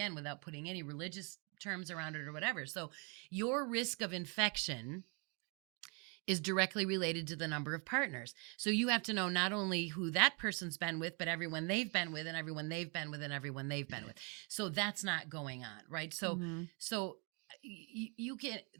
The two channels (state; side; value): quieter; left; 34.5 dB